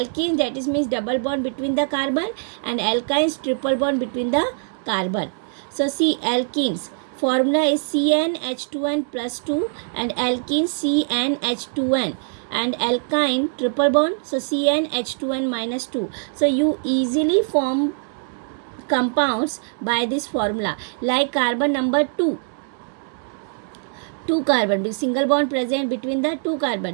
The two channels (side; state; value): left; silent; 64 dB below the other